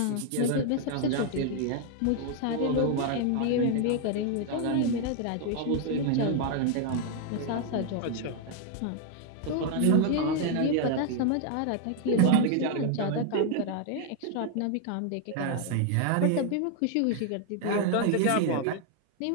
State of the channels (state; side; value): different; both; correlation 0.01